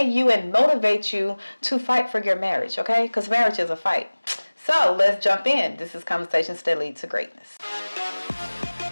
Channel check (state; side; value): inverted; both; correlation -1.00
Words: you and motivate you to fight for your marriage, okay? Because marriage is a fight. So let's jump in. This is Conversations That Lead to Greatness.